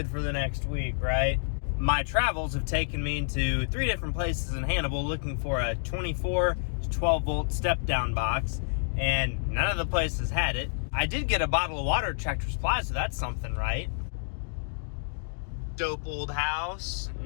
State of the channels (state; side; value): silent; right; digital silence